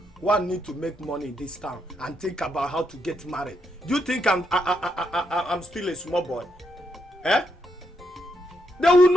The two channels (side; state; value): both; normal; correlation 0.79